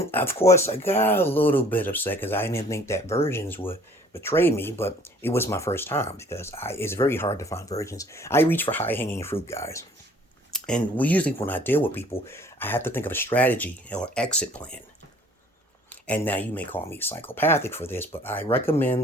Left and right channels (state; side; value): normal; both; correlation 0.55